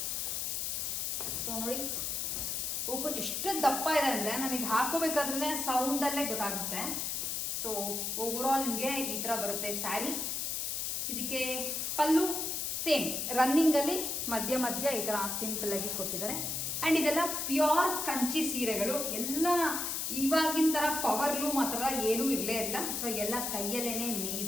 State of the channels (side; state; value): left; noise; hiss, 1 dB below the sound